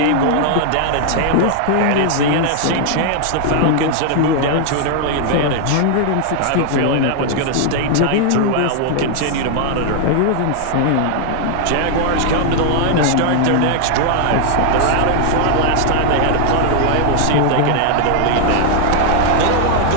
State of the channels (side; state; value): both; different; correlation 0.00